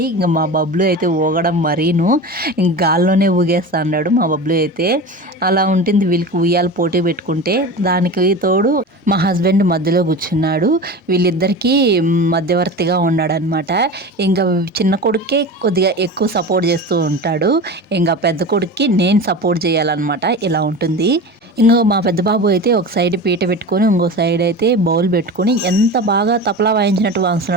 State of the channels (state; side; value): normal; both; correlation 0.30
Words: ఇంకా మా బబ్లు అయితే ఊగడం మరీను ఇంక గాల్లోనే ఊగేస్తా అన్నాడు మా బబ్లు అయితే. అలా ఉంటుంది వీళ్ళకి ఉయ్యాలు పోటీ పెట్టుకుంటే. దానికి తోడు మా హస్బెండ్ మధ్యలో కూర్చున్నాడు. వీళ్ళిద్దరికీ మధ్యవర్తిగా ఉన్నాడనమాట. ఇంకా చిన్న కొడుకే కొద్దిగా ఎక్కువ సపోర్ట్ చేస్తూ ఉంటాడు. ఇంకా పెద్ద కొడుక్కి నేను సపోర్ట్ చేయాలన్నమాట. ఇలా ఉంటుంది. ఇంకో మా పెద్ద బాబు అయితే ఒక సైడ్ పీట పెట్టుకొని ఇంకో సైడ్ అయితే బౌల్ పెట్టుకొని ఎంత బాగా తపలా వాయించినట్టు